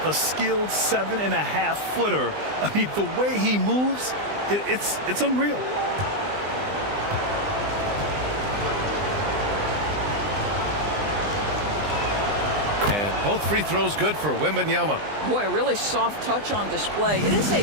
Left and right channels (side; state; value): left; late; 20 ms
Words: a skilled 7.5-footer. I mean, the way he moves, it's unreal. And both free throws good for Wembanyama. Boy, a really soft touch on display. It is a